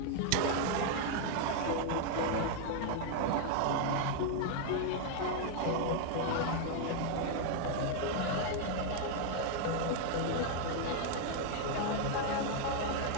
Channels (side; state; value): both; different; correlation 0.00